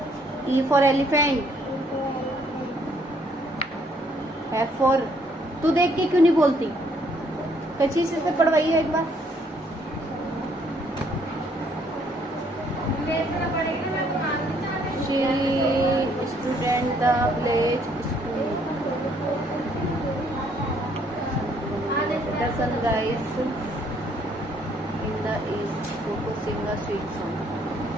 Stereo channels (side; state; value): both; normal; correlation 0.66